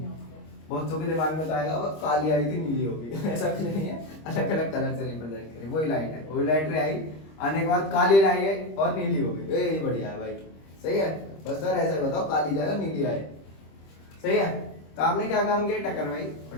बहुतों के दिमाग में तो आएगा अब काली आई थी नीली होगी ऐसा कुछ नहीं है, अलग अलग कलर से रिप्रेजेंट करें। वही लाइट है, वही लाइट रे आई, आने के बाद काली लाई है और नीली हो गई, ये बढ़िया है भाई, सही है। बस सर ऐसा बताओ, काली जाए और नीली आए, सही है। तो आपने क्या काम किया, टकराई, और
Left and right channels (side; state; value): right; late; 25 ms